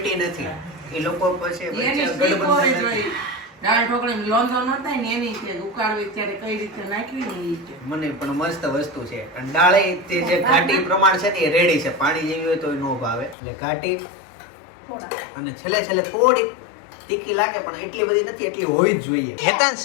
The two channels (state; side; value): drops out; right; at 13.4 s